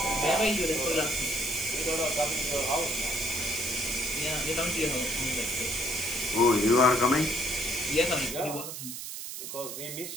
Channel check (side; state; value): right; noise; hiss, 8 dB below the sound